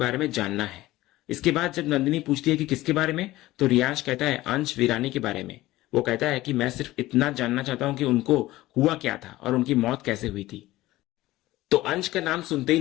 में जानना है। इसके बाद जब नंदिनी पूछती है कि किसके बारे में तो रियांश कहता है अंश वीरानी के बारे में। वो कहता है कि मैं सिर्फ इतना जानना चाहता हूं कि उनको हुआ क्या था और उनकी मौत कैसे हुई थी। तो अंश का नाम सुनते ही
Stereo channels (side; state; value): right; quieter; 17.2 dB